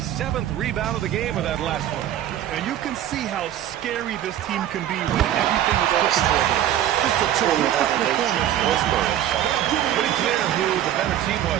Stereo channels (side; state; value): left; quieter; 11.6 dB